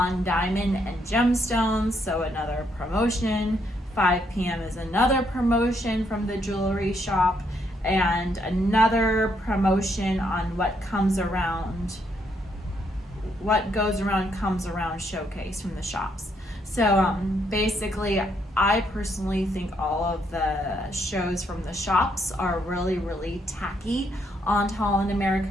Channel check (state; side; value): normal; both; correlation 0.74